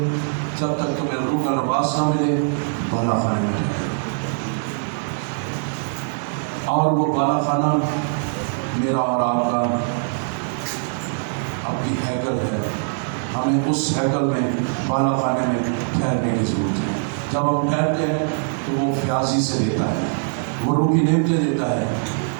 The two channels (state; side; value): silent; left; digital silence